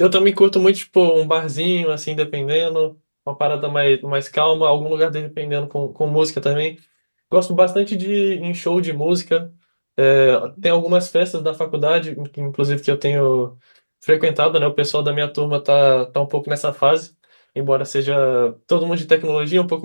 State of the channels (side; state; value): both; inverted; correlation -1.00